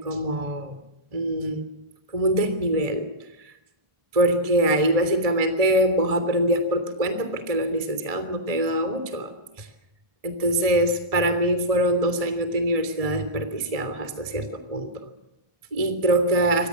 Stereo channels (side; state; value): left; late; 1.7 ms